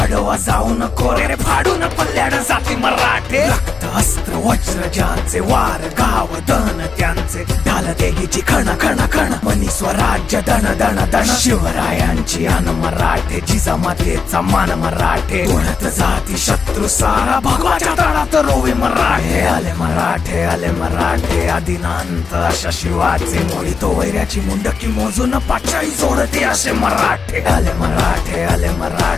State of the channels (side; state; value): right; quieter; 5.3 dB